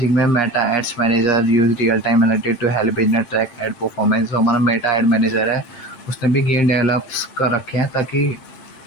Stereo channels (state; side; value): late; right; 7.7 ms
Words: में Meta ads manager use real time analytics to help business track ad performance. जो हमारा मेटा एड मैनेजर है उसने भी गेम डेवलप्स कर रखे हैं, ताकि